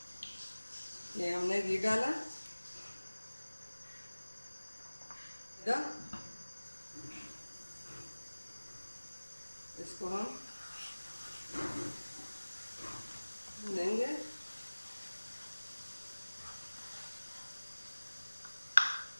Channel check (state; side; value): inverted; both; correlation -1.00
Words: ये हमने घी डाला। इसको हम लेंगे।